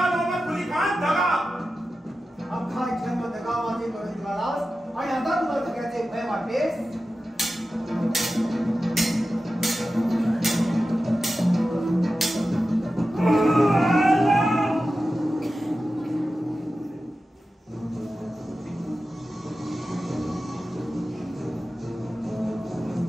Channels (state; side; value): normal; both; correlation 0.93